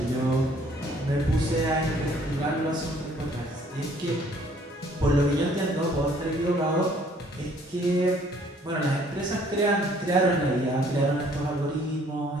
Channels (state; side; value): normal; both; correlation 0.60